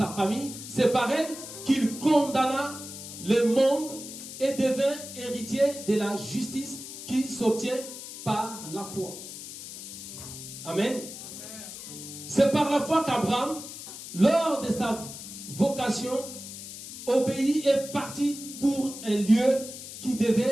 famille. C'est par elle qu'il condamna le monde et devint héritier de la justice qui s'obtient par la foi. Amen. C'est par la foi qu'Abraham, lors de sa vocation, obéit et partit pour un lieu qui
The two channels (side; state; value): left; noise; hiss, 11 dB below the sound